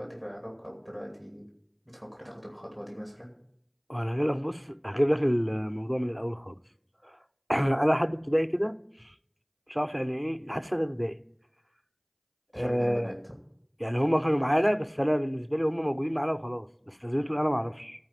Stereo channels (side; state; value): both; identical; correlation 1.00